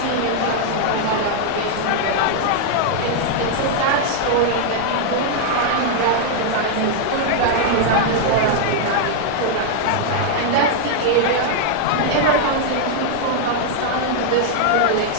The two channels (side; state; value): both; different; correlation 0.00